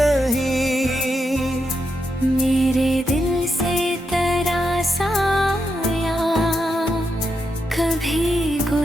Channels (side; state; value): both; normal; correlation 0.84